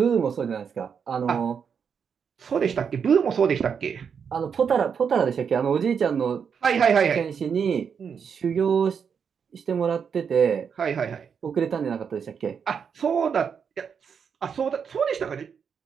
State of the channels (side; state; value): left; quieter; 6.8 dB